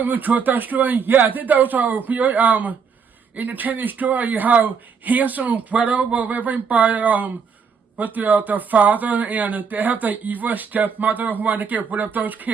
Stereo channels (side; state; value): left; quieter; 6.1 dB